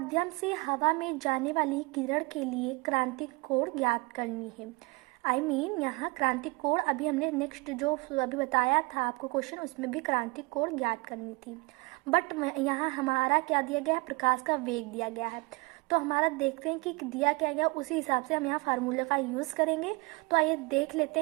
से हवा में जाने वाली किरण के लिए क्रांतिक कोण ज्ञात करनी है। यहाँ क्रांतिक कोण अभी हमने नेक्स्ट जो अभी बताया था आपको क्वेश्चन, उसमें भी क्रांतिक कोण ज्ञात करनी थी। बट यहाँ हमारा क्या दिया गया है, प्रकाश का वेग दिया गया है। तो हमारा देखते हैं कि दिया क्या गया, उसी हिसाब से हम यहाँ फार्मूला का यूज़ करेंगे। तो आइए देख लेते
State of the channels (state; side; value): quieter; left; 26.6 dB